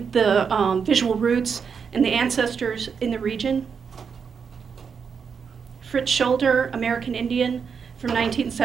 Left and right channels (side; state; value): left; quieter; 6.3 dB